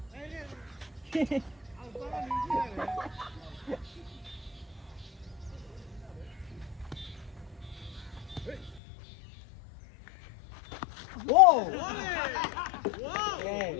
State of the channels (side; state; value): right; drops out; at 8.8 s